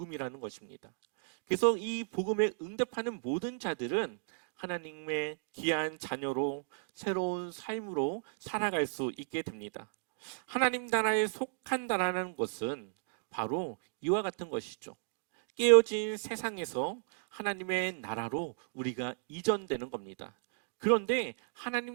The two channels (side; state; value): left; silent; digital silence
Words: 것입니다. 그래서 이 복음에 응답하는 모든 자들은 하나님의 귀한 자녀로 새로운 삶으로 살아갈 수 있게 됩니다. 하나님 나라에 속한다라는 것은 바로 이와 같은 것이죠. 깨어진 세상에서 하나님의 나라로 우리가 이전되는 겁니다. 그런데